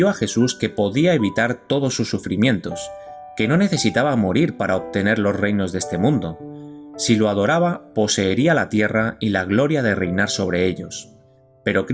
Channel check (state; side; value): identical; both; correlation 1.00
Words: a Jesús que podía evitar todos sus sufrimientos, que no necesitaba morir para obtener los reinos de este mundo. Si lo adoraba, poseería la tierra y la gloria de reinar sobre ellos. Pero